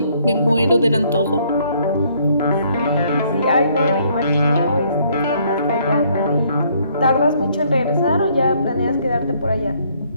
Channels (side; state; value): both; inverted; correlation -0.66